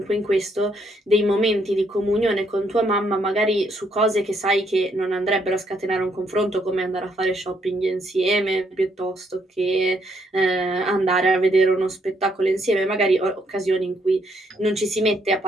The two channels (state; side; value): normal; both; correlation 0.72